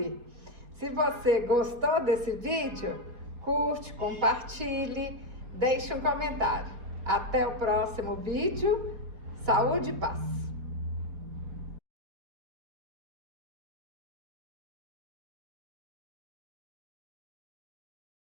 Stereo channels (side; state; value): left; late; 4.3 ms